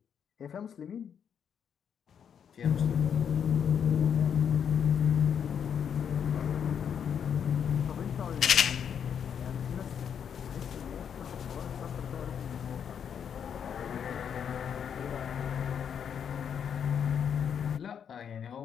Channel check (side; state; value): right; quieter; 7.9 dB